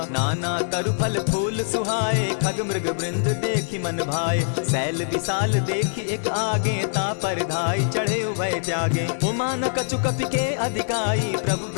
नाना तरु फल फूल सुहाए, खग मृग वृंद देखी मन भाए। शैल विशाल देखी एक आगे, ता पर धाई चढ़े उभय त्यागे। उमान कछु कपि के अधिकाई, प्रभु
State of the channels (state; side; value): silent; right; 63 dB below the other